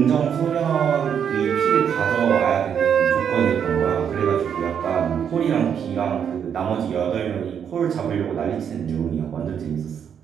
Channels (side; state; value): left; quieter; 8.0 dB